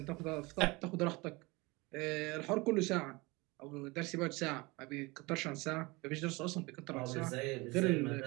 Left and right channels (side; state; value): left; quieter; 24.5 dB